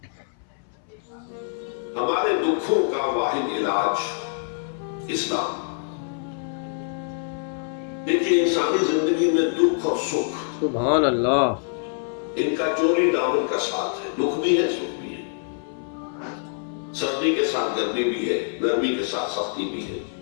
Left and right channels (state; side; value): silent; right; 59 dB below the other